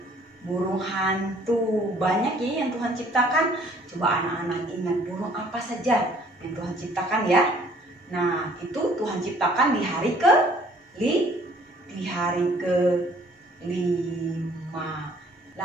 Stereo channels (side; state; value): both; normal; correlation 0.58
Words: burung hantu. Banyak ya yang Tuhan ciptakan. Coba anak-anak ingat burung apa saja yang Tuhan ciptakan ya. Nah, itu Tuhan ciptakan di hari kelima.